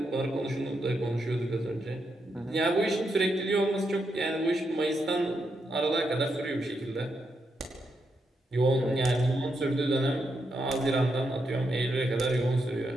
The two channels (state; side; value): normal; both; correlation 0.82